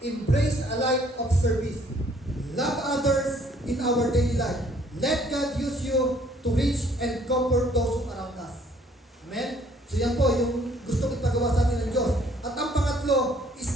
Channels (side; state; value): both; normal; correlation 0.61